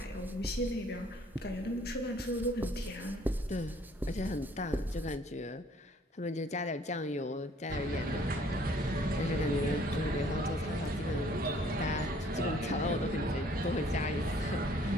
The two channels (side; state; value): both; normal; correlation 0.59